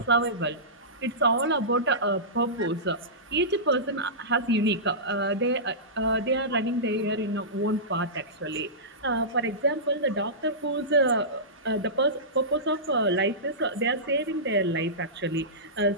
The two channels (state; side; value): normal; both; correlation -0.19